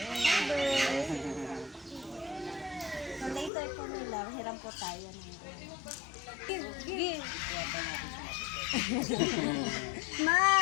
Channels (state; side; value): drops out; right; at 3.5 s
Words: So later po nila, hiram po tayo. Give.